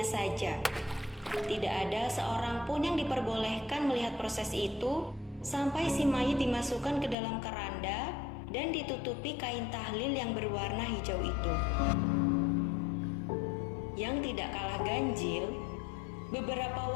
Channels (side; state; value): right; drops out; at 7.2 s